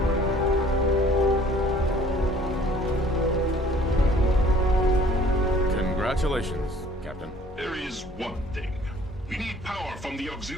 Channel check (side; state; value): both; normal; correlation 0.54